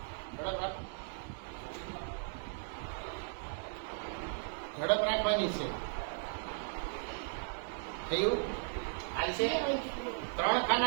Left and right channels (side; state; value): left; silent; digital silence